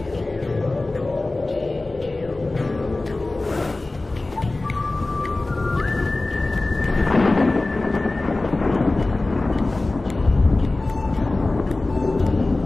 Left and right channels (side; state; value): right; quieter; 3.0 dB